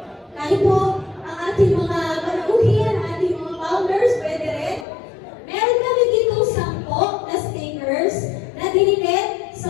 Kahit po ang ating mga panauhin, ating mga founders, pwede rin. Meron kami dito 10 na stickers na dinikit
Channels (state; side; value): drops out; right; at 4.9 s